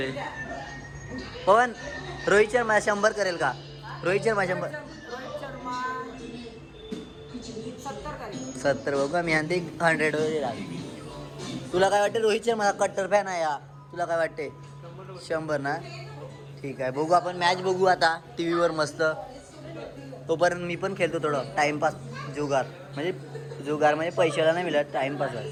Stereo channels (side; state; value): both; identical; correlation 1.00